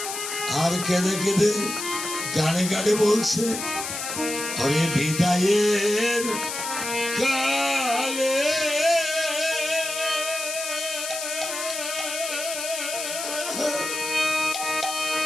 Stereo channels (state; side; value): noise; left; hiss, 5 dB below the sound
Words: আর কেঁদে কেঁদে গানে গানে বলছে হরে বিদায়ের কালে